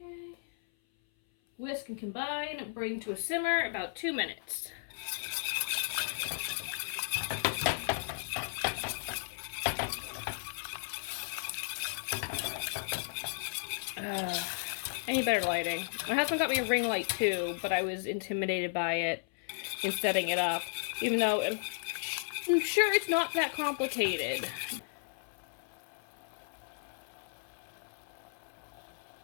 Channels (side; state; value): right; silent; 55 dB below the other